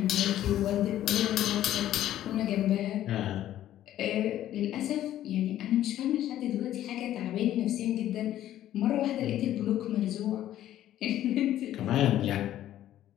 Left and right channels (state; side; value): quieter; right; 12.6 dB